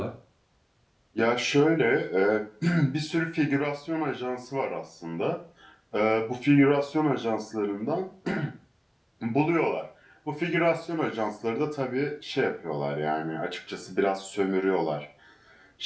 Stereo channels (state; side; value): identical; both; correlation 1.00